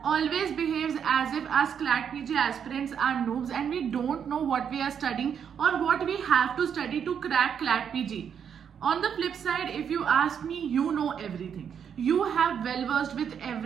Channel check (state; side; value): quieter; left; 7.8 dB